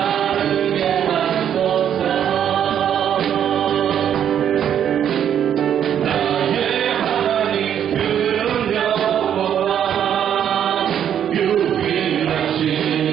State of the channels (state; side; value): quieter; left; 9.4 dB